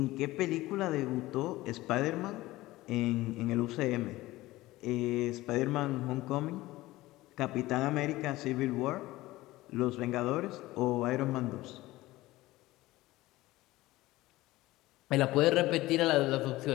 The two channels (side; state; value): right; quieter; 18.0 dB